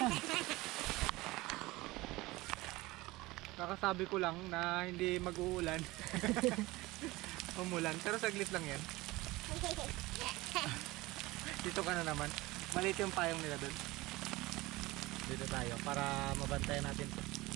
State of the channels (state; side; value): quieter; left; 20.3 dB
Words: Kakasabi ko lang na hindi mag-uulan. Umulan. Pero saglit lang yan. Dito ka na naman. Maliit yung payong nila doon. Dito tayo para mabantayan natin to.